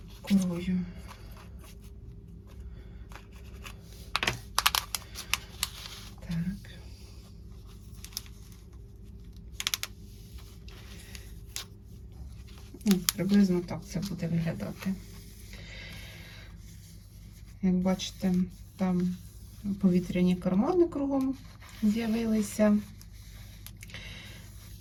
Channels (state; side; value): identical; both; correlation 1.00